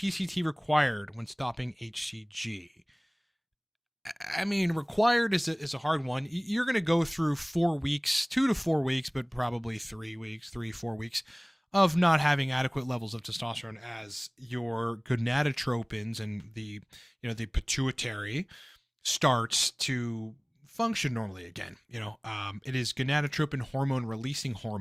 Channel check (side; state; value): both; identical; correlation 1.00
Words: required when stopping HCG? I mean, required is a hard one. You're going to go through 4 weeks, 2 to 4 weeks, but probably 3 weeks, 4 weeks of not having adequate levels of testosterone as your gonadotropins and the pituitary starts to function normally again. It is gonadotropin hormone releasing